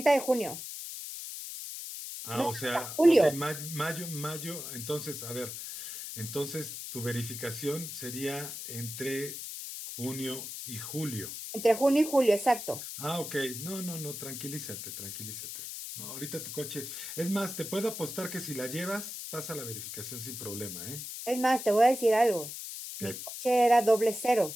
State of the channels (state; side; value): noise; left; hiss, 8 dB below the sound